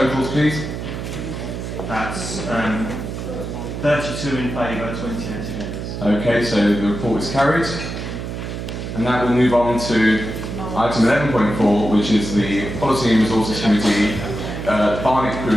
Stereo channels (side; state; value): right; noise; hum, 6 dB below the sound